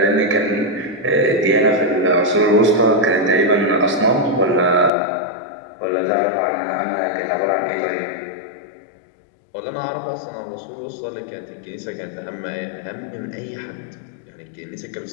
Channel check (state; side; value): drops out; right; at 4.9 s